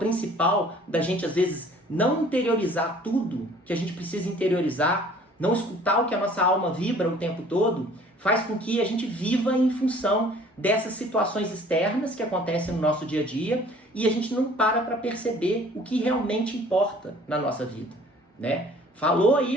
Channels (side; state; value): both; normal; correlation 0.53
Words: da gente às vezes não interiorizar tudo que a gente precisa interiorizar, não escutar o que a nossa alma vibra o tempo todo, faz com que a gente viva em função dessas situações externas que acontecem no nosso dia a dia e a gente não para perceber o que realmente importa na nossa vida, né? Falou